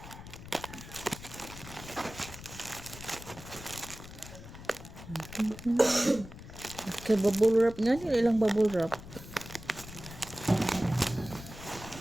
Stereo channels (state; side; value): noise; left; rumble, 14 dB below the sound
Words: Okay, bubble wrap nga. Ilang bubble wrap.